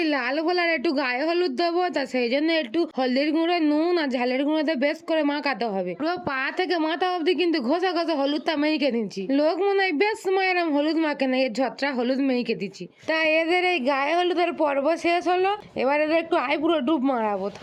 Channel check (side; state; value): both; identical; correlation 1.00